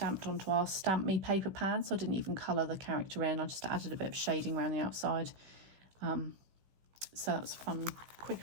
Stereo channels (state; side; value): late; left; 16 ms